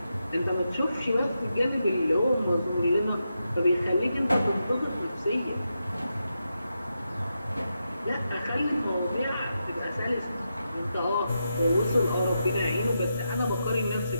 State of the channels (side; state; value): both; inverted; correlation -0.86